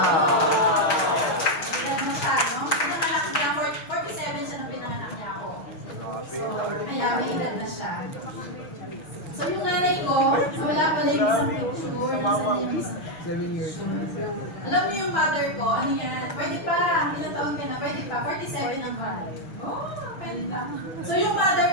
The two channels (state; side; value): late; right; 6.3 ms